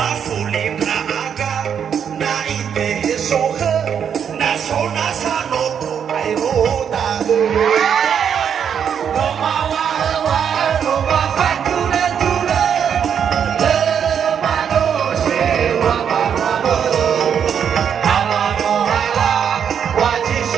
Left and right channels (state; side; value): quieter; left; 7.9 dB